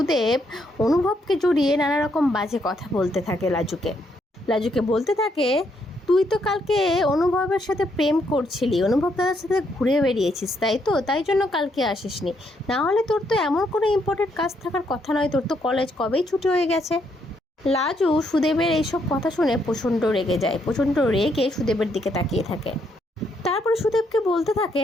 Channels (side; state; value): both; normal; correlation 0.74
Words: অনুভবকে জড়িয়ে নানা রকম বাজে কথা বলতে থাকে। লাজুকে বলতে থাকে, তুই তো কালকে অনুভবের সাথে প্রেম করছিলি, অনুভব দাদার সাথে ঘুরে বেরিয়েছিস, তাই তো, তাই জন্য কালকে আসিসনি। না হলে তোর তো এমন কোনো ইম্পর্টেন্ট কাজ থাকার কথা নয়, তোর তো কলেজ কবেই ছুটি হয়ে গেছে। লাজু সুদেবের এইসব কথা শুনে প্রচণ্ড রেগে যায়, প্রচণ্ড রেগে সুদেবের দিকে তাকিয়ে থাকে। তারপরে সুদেবকে বলতে